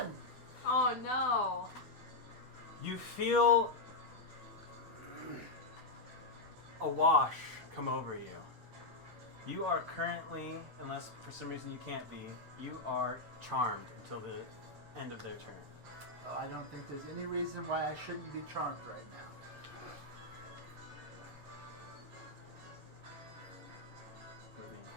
Oh no. You feel a wash come over you. You are currently, unless for some reason you can't be, you are charmed until the end of their turn. Oh, I don't think there's any reason why I shouldn't be charmed right now.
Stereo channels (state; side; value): quieter; right; 3.1 dB